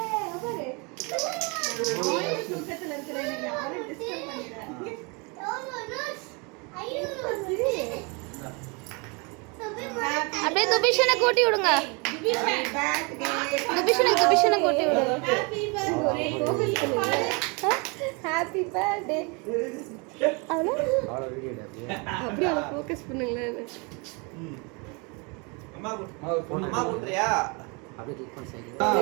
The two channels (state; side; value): quieter; left; 30.9 dB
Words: அப்படியே துபிஷனை கூட்டி விடுங்க. துபிஷனை கூட்டி விடுங்க. Happy birthday. அப்படியே அவளை ஃபோக்கஸ் பண்ணுங்களேன். அம்மா கூட்றியா? அப்படியே கிளிக் பண்ணி சைடுல